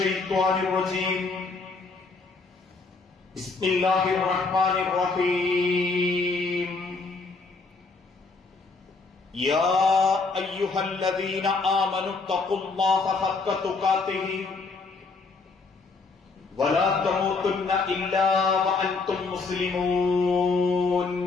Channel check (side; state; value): right; quieter; 4.1 dB